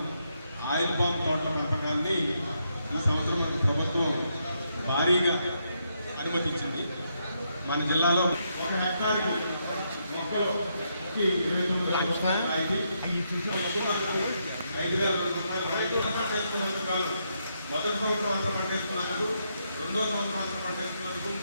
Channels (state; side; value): inverted; both; correlation -0.79